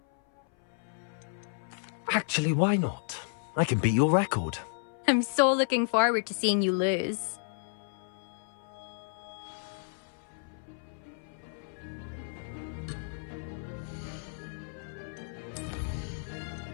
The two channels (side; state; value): right; silent; 56 dB below the other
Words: Actually, why not? I can beat your record. I'm so looking forward to seeing you lose.